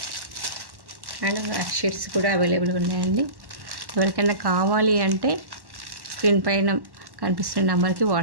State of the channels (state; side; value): late; left; 1.1 ms